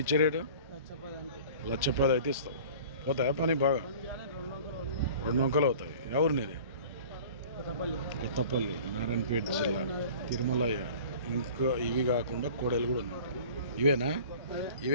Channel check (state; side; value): inverted; both; correlation -0.44